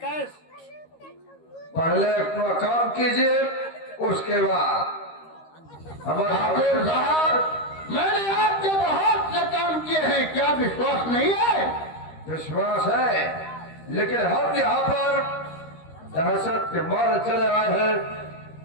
पहले अपना काम कीजिए, उसके बाद हमारे ठाकुर साहब, मैंने आपके बहुत से काम किए हैं, क्या विश्वास नहीं है? विश्वास है, लेकिन हम यहाँ पर दहशत के मारे चले आए हैं,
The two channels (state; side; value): late; right; 13 ms